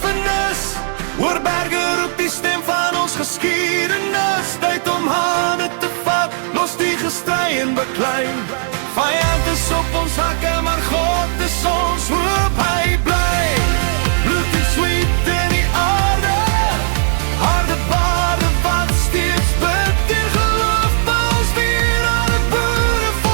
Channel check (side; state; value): left; silent; digital silence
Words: oor berge roep die stem van ons geskiedenis. Tyd om hande te vat, los die gestry en beklei. Vyand is op ons hakke, maar God is ons hoop, hy bly. Bloed en sweet in die aarde, harde bade wat steeds bid en geloof. Ons weer aan het boere,